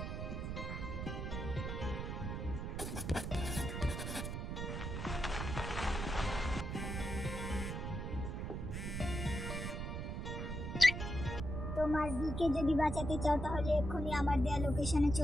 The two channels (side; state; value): right; noise; rumble, 4 dB below the sound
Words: তোমার বিকে যদি বাঁচাতে চাও তাহলে এক্ষুনি আমার দেয়া লোকেশনে